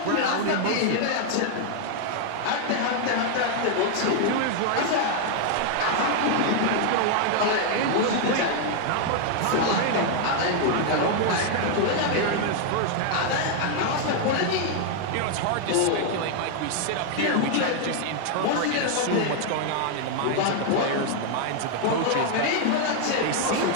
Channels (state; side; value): different; both; correlation 0.00